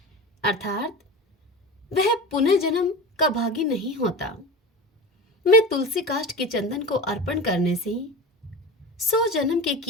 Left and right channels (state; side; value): normal; both; correlation 0.30